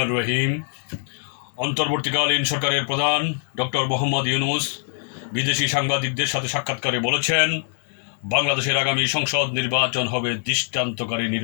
রহিম। অন্তর্বর্তীকালীন সরকারের প্রধান ডক্টর মোহাম্মদ ইউনূস বিদেশি সাংবাদিকদের সাথে সাক্ষাৎকারে বলেছেন, বাংলাদেশের আগামী সংসদ নির্বাচন হবে দৃষ্টান্তকারী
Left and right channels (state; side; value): silent; right; 63 dB below the other